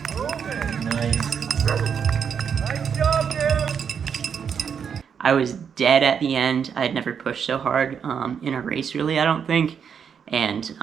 I was dead at the end. I had never pushed so hard in a race, really, I don't think. And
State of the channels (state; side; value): quieter; left; 7.2 dB